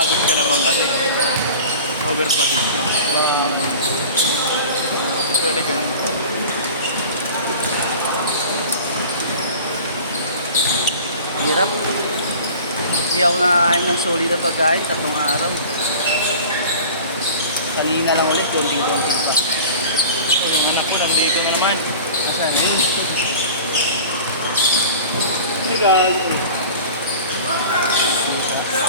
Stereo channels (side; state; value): both; inverted; correlation -0.39